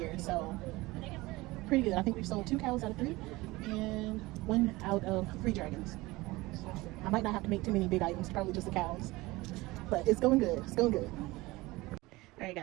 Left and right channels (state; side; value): quieter; left; 20.8 dB